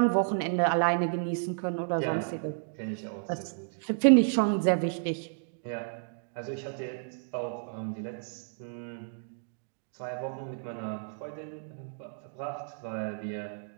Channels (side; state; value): left; silent; digital silence